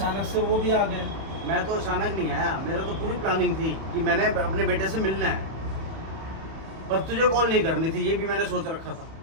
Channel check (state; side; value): late; left; 31 ms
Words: से वो भी आ गए। मैं तो अचानक नहीं आया, मेरा तो पूरी प्लानिंग थी कि मैंने अपने बेटे से मिलना है, पर तुझे कॉल नहीं करनी थी, ये भी मैंने सोच रखा था।